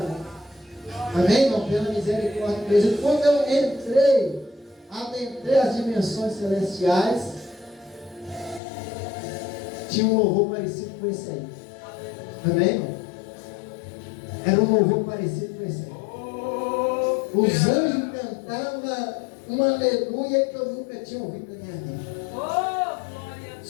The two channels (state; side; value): drops out; right; at 8.6 s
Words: Amém, irmão? Pela misericórdia de Deus. E quando eu adentrei as dimensões celestiais, tinha um louvor parecido com esse aí. Amém, irmão? Era um louvor parecido com esse aí. Os anjos cantavam um aleluia que eu nunca tinha ouvido na minha vida.